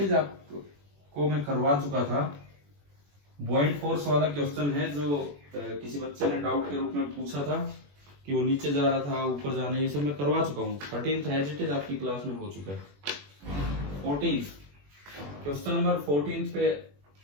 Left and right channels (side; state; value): left; late; 21 ms